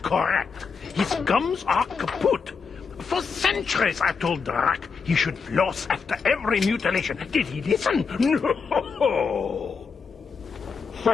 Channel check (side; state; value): right; quieter; 5.4 dB